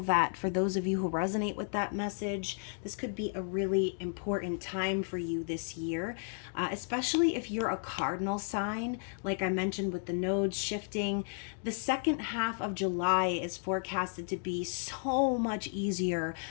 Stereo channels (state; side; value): silent; right; 56 dB below the other